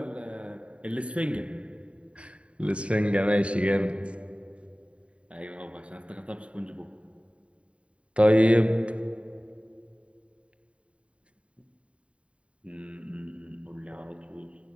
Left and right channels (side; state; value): left; late; 0.061 ms